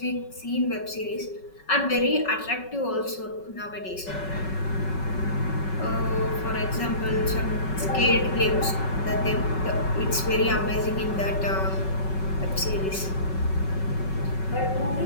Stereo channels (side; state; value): right; late; 5.3 ms